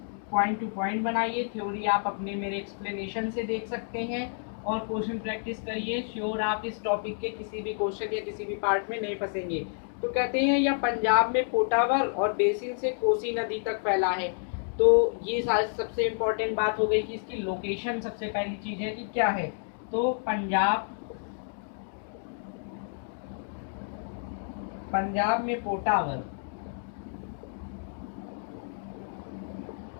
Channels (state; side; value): silent; right; digital silence